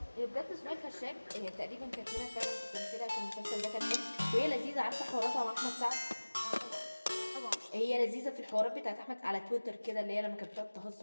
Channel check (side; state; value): both; inverted; correlation -1.00